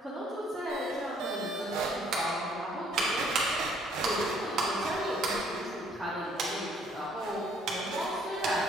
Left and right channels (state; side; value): normal; both; correlation 0.63